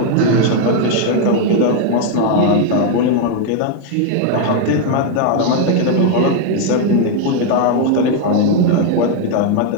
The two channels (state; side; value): different; both; correlation 0.01